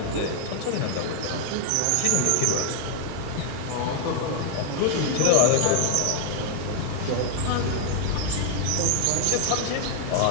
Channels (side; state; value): both; different; correlation 0.00